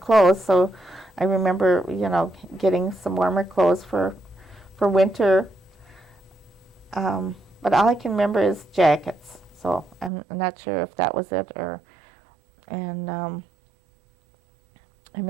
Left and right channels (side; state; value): left; drops out; at 10.1 s